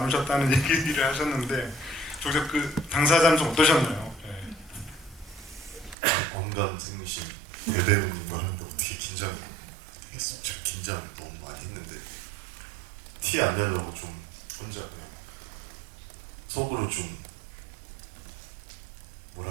하셨다는 얘기를 하셨는데 정작 그 당사자는 좀 어떠셨나요? 언감생심 대배우님과 하는데 어떻게 긴장이 되겠습니까? 제가 긴장 너무 많이 했는데 티 안 내려고 좀 혼자 그냥 속으로 좀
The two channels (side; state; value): left; drops out; at 6.0 s